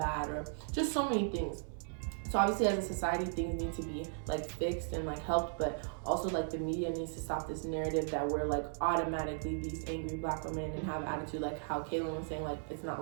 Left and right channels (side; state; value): left; silent; 53 dB below the other